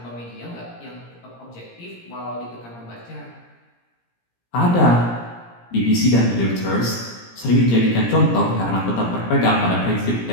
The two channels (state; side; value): late; right; 17 ms